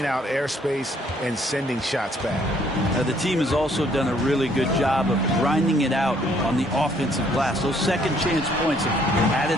out airspace and sending shots back. The team has also done a really good job of grinding it out on the offensive glass. Those second chance points have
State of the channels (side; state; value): both; normal; correlation 0.65